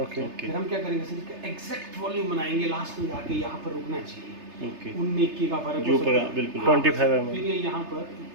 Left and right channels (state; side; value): late; left; 3.3 ms